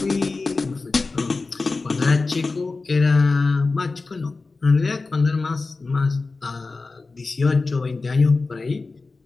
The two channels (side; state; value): right; quieter; 3.8 dB